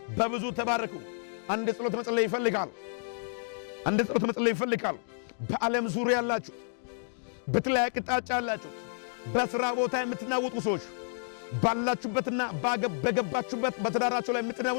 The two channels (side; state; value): right; silent; digital silence